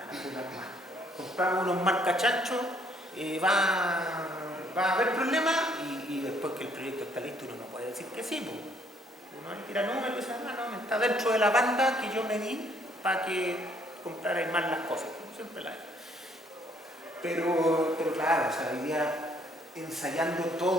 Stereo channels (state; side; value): normal; both; correlation 0.65